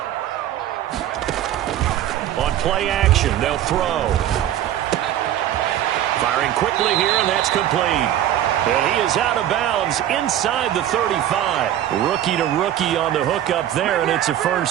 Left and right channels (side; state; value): left; quieter; 11.8 dB